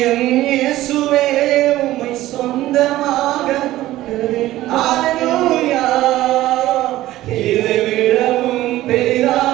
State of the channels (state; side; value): quieter; left; 15.5 dB